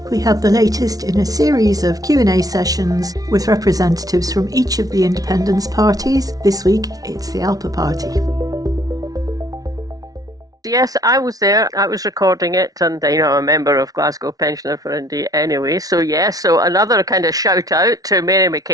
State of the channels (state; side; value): late; left; 0.18 ms